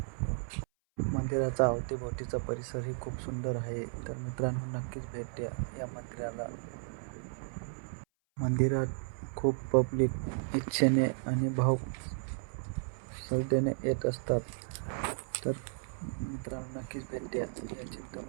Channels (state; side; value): silent; left; 55 dB below the other